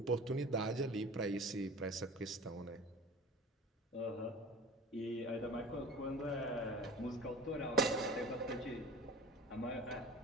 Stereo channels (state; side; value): normal; both; correlation 0.38